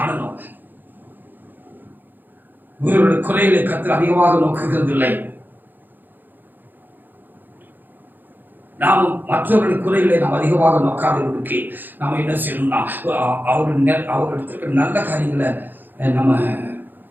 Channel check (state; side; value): late; left; 0.089 ms